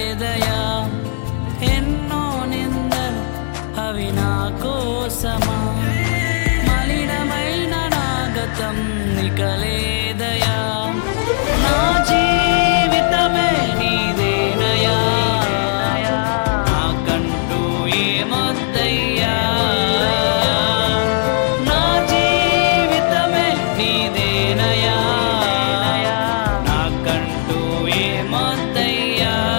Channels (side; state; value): right; silent; digital silence